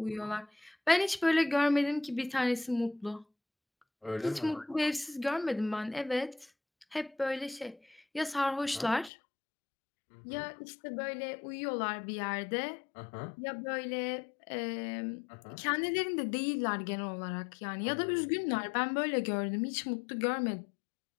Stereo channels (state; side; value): drops out; right; at 9.1 s